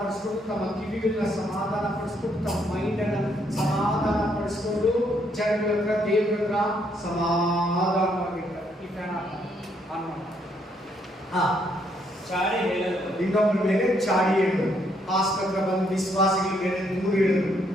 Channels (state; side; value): normal; both; correlation 0.72